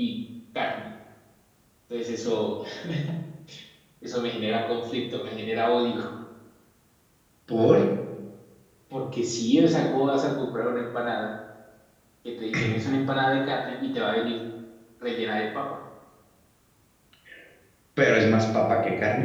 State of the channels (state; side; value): identical; both; correlation 1.00